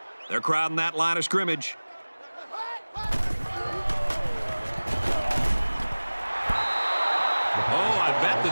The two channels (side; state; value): both; inverted; correlation -1.00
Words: They're crowding that line of scrimmage. Oh, I bet the